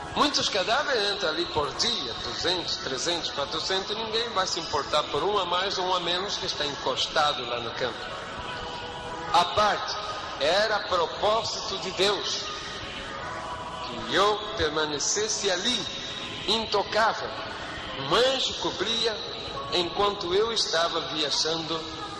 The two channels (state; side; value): identical; both; correlation 1.00